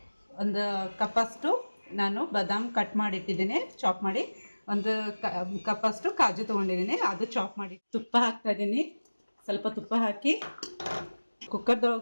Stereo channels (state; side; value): inverted; both; correlation -1.00